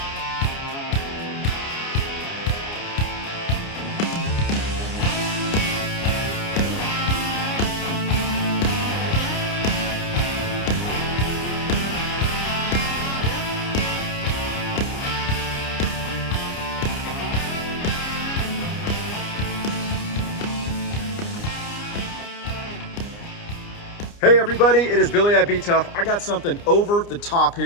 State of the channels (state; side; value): late; right; 29 ms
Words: Hey everybody, it is Billy at BTUFF. I got something over the top